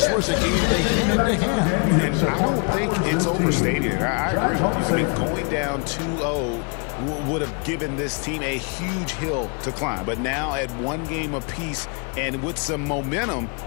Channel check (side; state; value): right; quieter; 36.1 dB